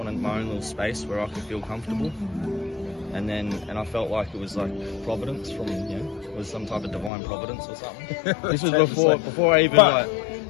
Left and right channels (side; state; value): right; drops out; at 7.1 s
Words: my own little space where I could feel comfortable. And I felt like it was like providence from, you know, it was some type of divine providence or something. This was before I even like